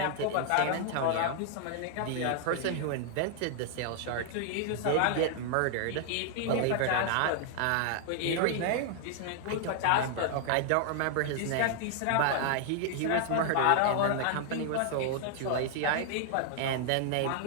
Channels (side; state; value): both; different; correlation -0.01